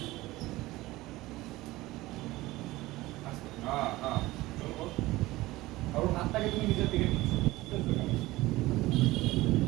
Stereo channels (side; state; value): left; quieter; 18.7 dB